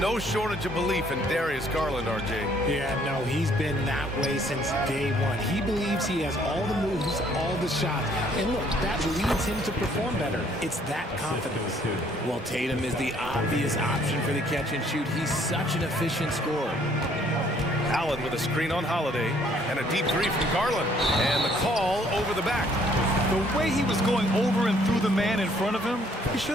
shortage of belief in Darius Garland, RJ. Yeah, no, he's been that way since day one. He believes he has all the moves, all the shots. And look, that leads him to perform better. It's that confidence. Well, Tatum is the obvious option for the catch and shoot. He's such an efficient scorer. Allen with a screen on Holiday. And a deep 3 from Garland. And the call over the back. The way he was going over and through the man in front of him, he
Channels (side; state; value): both; normal; correlation 0.63